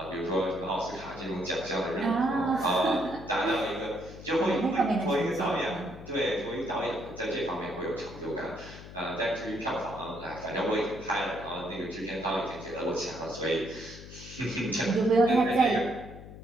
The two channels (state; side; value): noise; left; hum, 14 dB below the sound